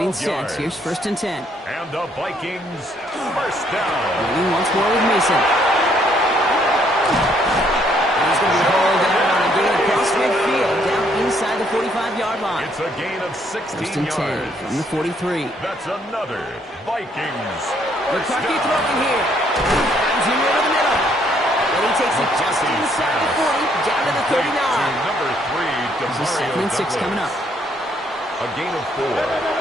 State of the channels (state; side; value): normal; both; correlation 0.68